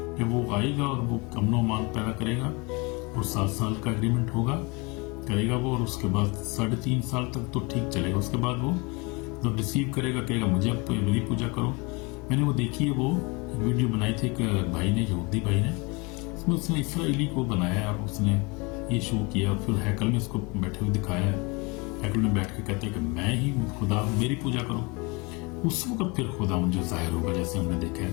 कि वो आएगा और वो अमन मान पैदा करेगा, और 7 साल का एग्रीमेंट करेगा वो, और उसके बाद 3.5 साल तक तो ठीक चलेगा। उसके बाद वो तो रिसीव करेगा, कहेगा मुझे अब मेरी पूजा करो। मैंने वो देखी है, वो वीडियो बनाई थी एक भाई ने, यहूदी भाई ने, उसमें उसने इसराइली को बनाया और उसने ये शो किया, फिर हैकल में उसको बैठे हुए दिखाया, हैकल में बैठ के कहते हैं कि मैं ही खुदा हूँ, मेरी पूजा करो। उस वक्त फिर खुदा जो जाहिर होगा, जैसे हमने देखा है,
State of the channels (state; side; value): quieter; right; 27.9 dB